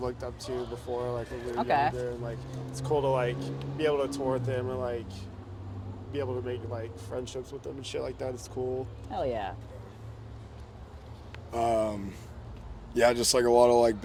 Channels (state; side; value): identical; both; correlation 1.00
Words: looked up to before, like when we were Okay. younger. And like, it's cool to like be able to tour with them and like be able to make like friendships with them and shit like that. It's cool. Hell yeah. Yeah, just like a lot of like